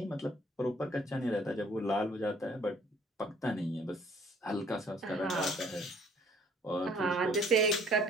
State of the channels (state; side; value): normal; both; correlation 0.59